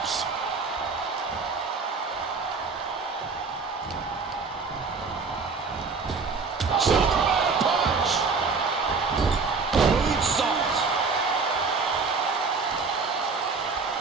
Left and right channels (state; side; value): quieter; left; 4.6 dB